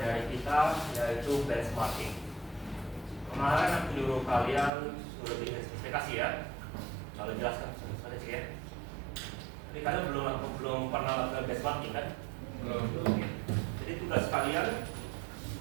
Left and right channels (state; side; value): drops out; left; at 4.7 s